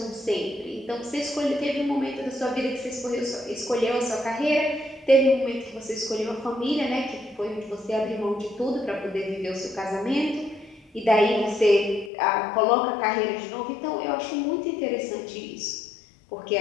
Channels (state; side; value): drops out; right; at 12.1 s